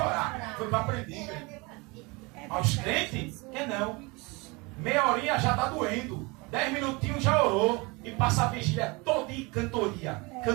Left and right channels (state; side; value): quieter; left; 26.5 dB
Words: orar. Foi para aprender. Aos crentes, que não. Meia horinha já está doendo. 10 minutinhos já orou. E passa a vigília toda em cantoria.